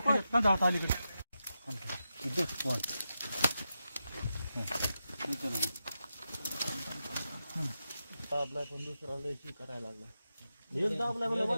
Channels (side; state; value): both; inverted; correlation -0.89